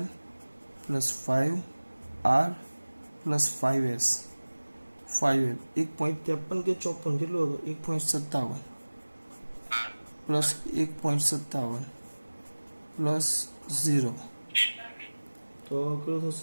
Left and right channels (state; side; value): inverted; both; correlation -1.00